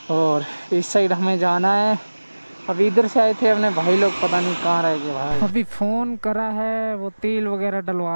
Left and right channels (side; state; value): both; inverted; correlation -1.00